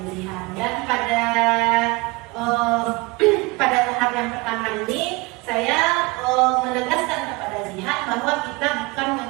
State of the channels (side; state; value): left; quieter; 24.8 dB